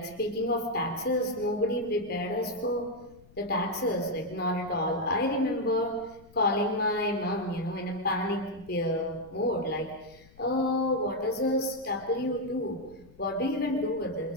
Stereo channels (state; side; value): noise; left; rumble, 25 dB below the sound